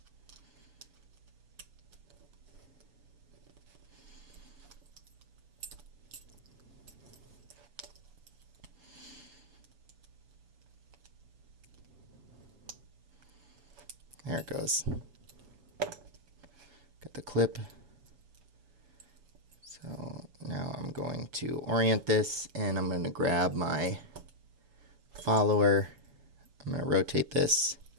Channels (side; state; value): left; late; 7.0 ms